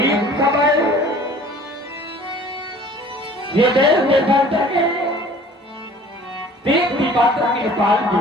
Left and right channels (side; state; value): both; normal; correlation 0.49